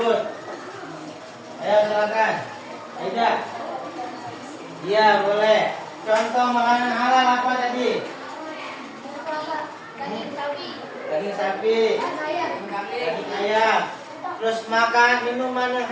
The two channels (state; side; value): identical; both; correlation 1.00